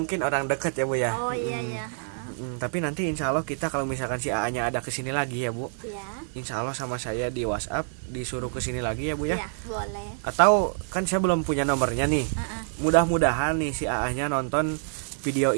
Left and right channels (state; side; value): silent; left; digital silence